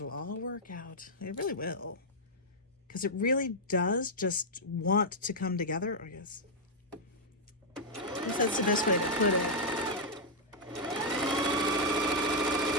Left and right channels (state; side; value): normal; both; correlation -0.04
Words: all work out. It really will. Because it really does just want to come together, I guess. I guess that's the best way to put it.